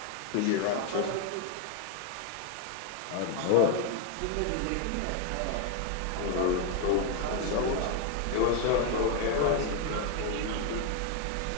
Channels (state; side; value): different; both; correlation 0.01